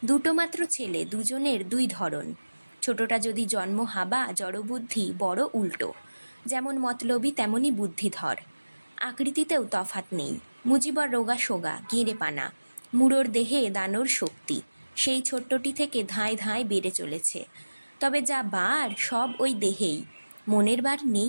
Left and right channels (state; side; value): inverted; both; correlation -1.00